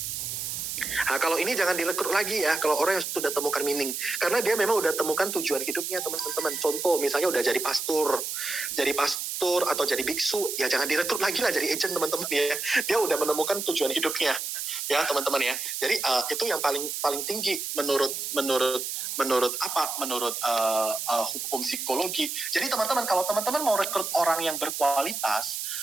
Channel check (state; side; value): noise; right; hiss, 4 dB below the sound